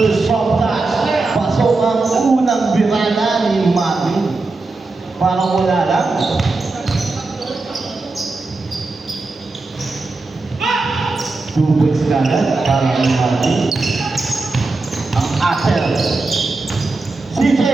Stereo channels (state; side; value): quieter; left; 3.5 dB